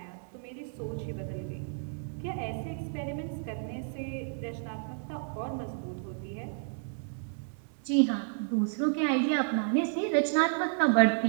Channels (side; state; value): left; silent; digital silence